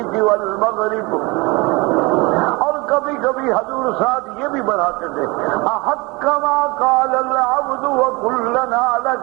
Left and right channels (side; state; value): left; quieter; 25.4 dB